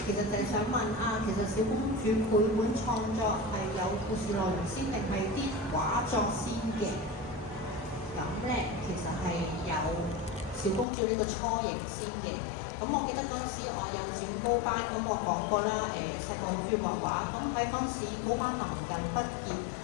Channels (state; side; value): drops out; right; at 10.9 s